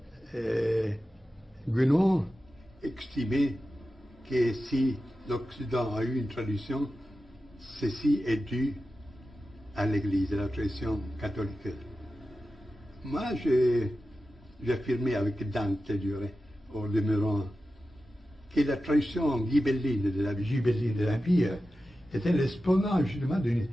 Guénon estimait que si l'Occident a eu une tradition, ceci est dû à l'Église, à la tradition catholique. Moi, j'affirmais avec Dante, je dirais, au demeurant, que la tradition ghibelline de l'Empire était l'exponent justement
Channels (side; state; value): both; normal; correlation 0.93